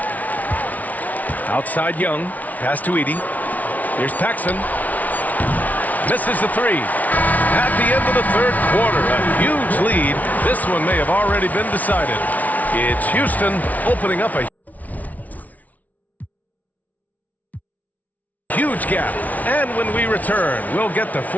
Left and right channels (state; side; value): late; right; 0.073 ms